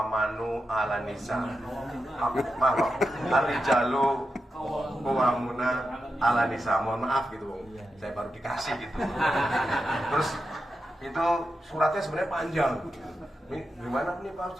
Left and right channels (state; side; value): normal; both; correlation 0.88